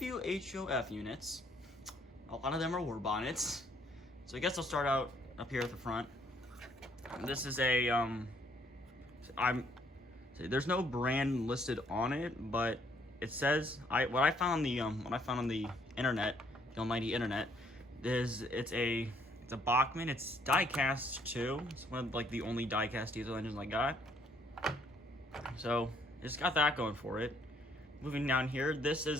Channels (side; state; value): both; normal; correlation 0.66